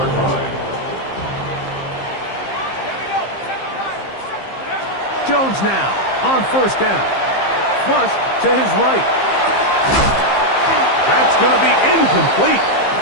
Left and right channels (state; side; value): late; right; 15 ms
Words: line. Jones now on 1st down. Flush to his right. That's going to be incomplete.